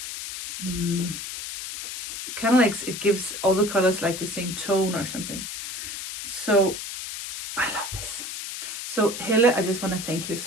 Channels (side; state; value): left; noise; hiss, 7 dB below the sound